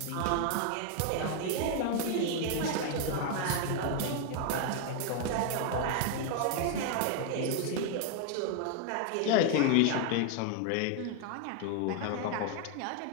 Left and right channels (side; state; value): both; different; correlation 0.00